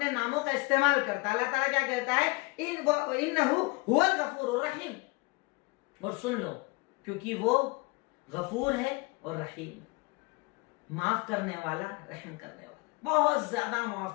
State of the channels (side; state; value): right; quieter; 25.4 dB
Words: ناموں کا استعمال کرتا ہے. اللہ تعالیٰ کیا کہتا ہے انہ هو الغفور الرحیم. اور سن لو، کیونکہ وہ غفور ہے اور رحیم، معاف کرنے والا، رحم کرنے والا، بہت زیادہ